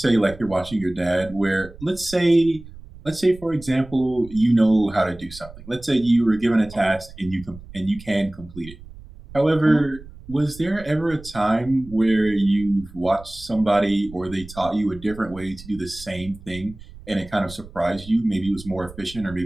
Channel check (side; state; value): right; noise; rumble, 18 dB below the sound